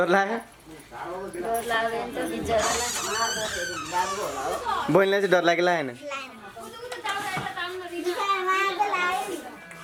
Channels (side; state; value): both; identical; correlation 1.00